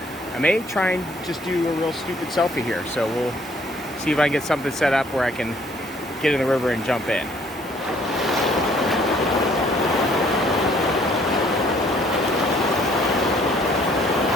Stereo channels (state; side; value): normal; both; correlation 0.62